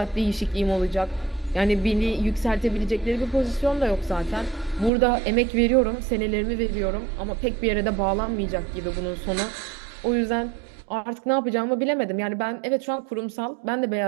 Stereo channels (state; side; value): drops out; left; at 4.9 s